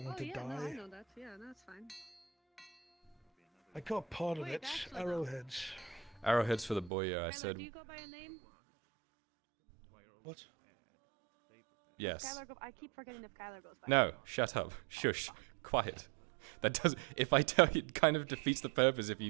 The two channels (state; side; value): drops out; left; at 6.9 s